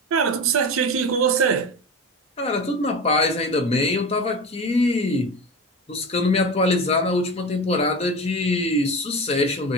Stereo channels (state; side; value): normal; both; correlation 0.27